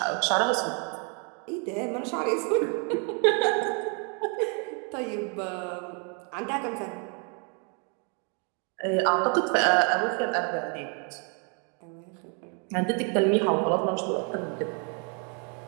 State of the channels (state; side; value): quieter; left; 38.4 dB